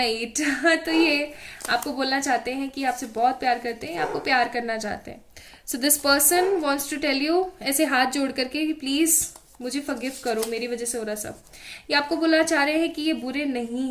eat तो ये आपको बोलना चाहते हैं कि आपसे बहुत प्यार करते हैं, आपको प्यार करना चाहते हैं। So this person wants to tell you, ऐसे हाथ जोड़ करके कि प्लीज मुझे फॉरगिव करो, मेरी वजह से हो रहा सब। ये आपको बोलना चाह रहे हैं कि ये बुरे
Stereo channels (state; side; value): identical; both; correlation 1.00